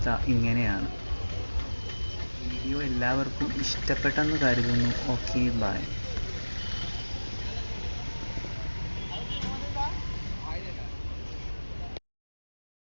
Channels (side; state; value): both; inverted; correlation -1.00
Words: ഇങ്ങനെയാണ്. വീഡിയോ എല്ലാവർക്കും ഇഷ്ടപ്പെട്ടെന്ന് കരുതുന്നു. Okay, by.